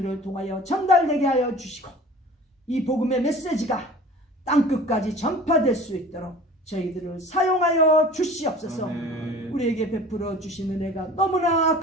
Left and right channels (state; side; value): normal; both; correlation 0.43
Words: 통하여 전달되게 하여 주시고 이 복음의 메시지가 땅끝까지 전파될 수 있도록 저희들을 사용하여 주시옵소서. 우리에게 베풀어 주신 은혜가 너무나